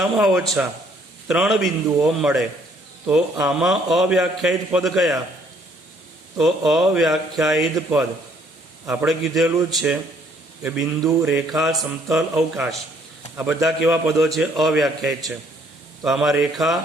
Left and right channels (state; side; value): normal; both; correlation 0.64